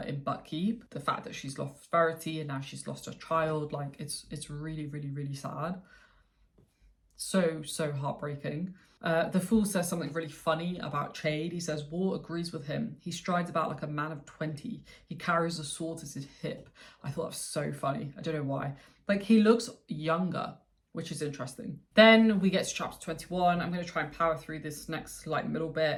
Buckkeep. The fact that she's lost Verity and now she's lost her child, like, it's really, really, really sad. So heartbreaking. The Fool says something really funny about Chade. He says, war agrees with him. He strides about like a man of 20. He carries a sword at his hip. I thought that was so funny. I don't know why. Like, he looks younger, which is interesting. Then we get to chapter 21. I'm going to try and power through this next like middle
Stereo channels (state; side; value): identical; both; correlation 1.00